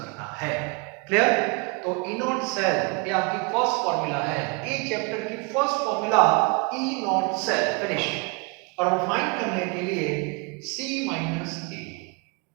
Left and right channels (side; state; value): left; quieter; 30.9 dB